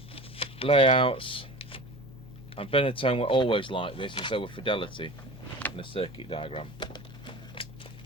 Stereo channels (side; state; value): both; normal; correlation 0.36